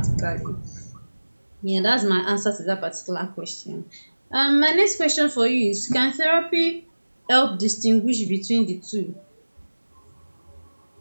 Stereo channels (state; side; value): inverted; both; correlation -1.00